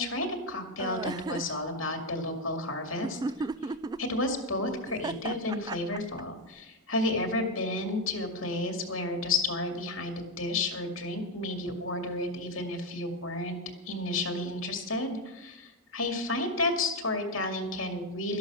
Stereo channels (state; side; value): normal; both; correlation 0.09